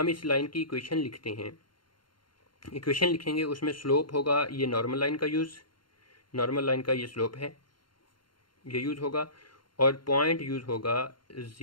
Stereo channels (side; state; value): right; late; 0.72 ms